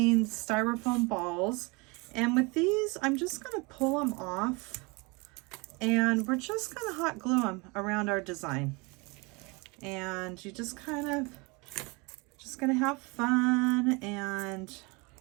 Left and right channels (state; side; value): quieter; left; 27.6 dB